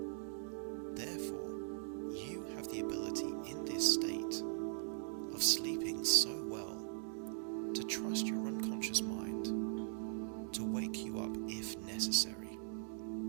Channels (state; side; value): silent; left; digital silence